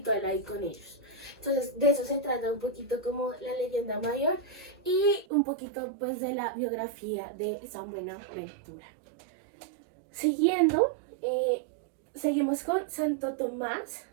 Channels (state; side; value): drops out; left; at 5.2 s